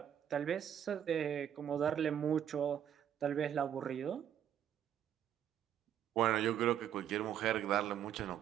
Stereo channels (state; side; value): quieter; left; 9.8 dB